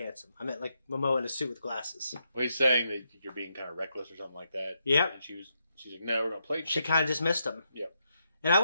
handsome. I meant like Momoa in a suit with glasses. Well, he's saying that you're being kind of reckless or something like that. Yep. And she's like, no, we're going to play chicken. She kind of dismissed him. Yep. And I've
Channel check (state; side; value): inverted; both; correlation -0.81